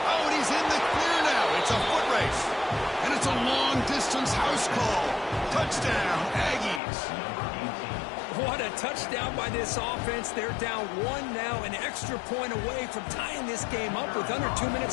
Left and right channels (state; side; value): drops out; right; at 6.8 s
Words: Oh, and he's in the clear now. It's a foot race. And it's a long-distance house call. Touchdown, Aggies. What a touchdown by this offense. They're down 1 now, an extra point away from tying this game up with under 2